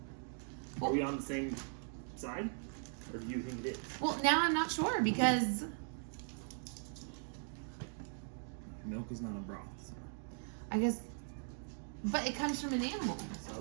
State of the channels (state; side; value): silent; left; 51 dB below the other